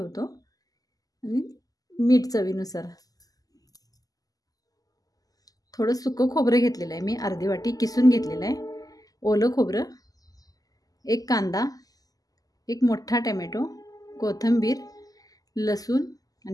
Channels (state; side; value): late; right; 0.17 ms